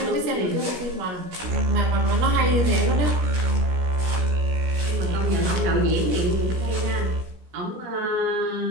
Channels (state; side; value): late; left; 16 ms